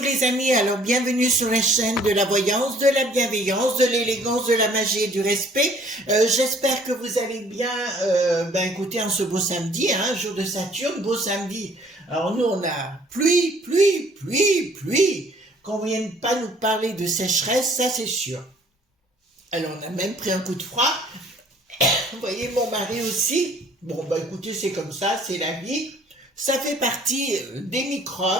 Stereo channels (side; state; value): both; normal; correlation 0.57